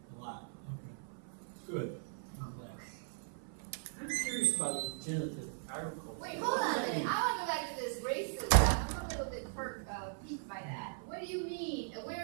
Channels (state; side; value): silent; left; 52 dB below the other